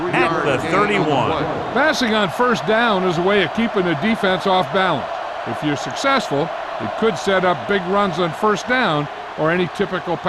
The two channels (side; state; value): both; identical; correlation 1.00